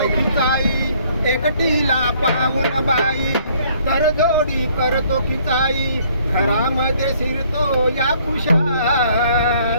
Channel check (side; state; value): both; inverted; correlation -0.62